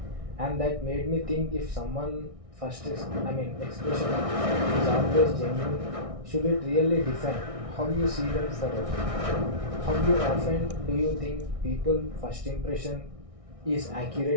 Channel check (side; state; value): left; late; 1.6 ms